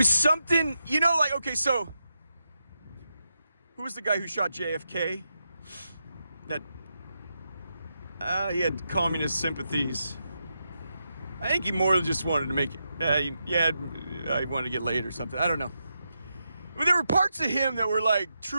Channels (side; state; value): both; inverted; correlation -0.85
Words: something, you know, like, okay, so who was the guy who shot JFK? That he had communist sympathies. I think he more just wanted to make it. I wanted to get laid or something. I don't know. But there were parts of him that were like